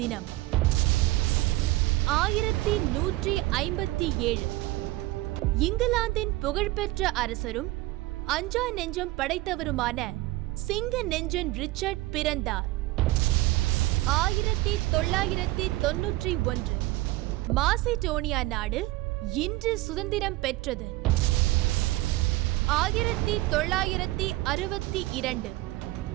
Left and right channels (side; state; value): left; quieter; 18.8 dB